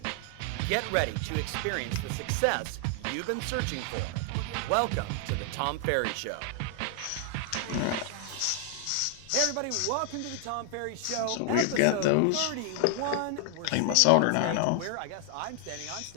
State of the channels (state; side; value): different; both; correlation 0.00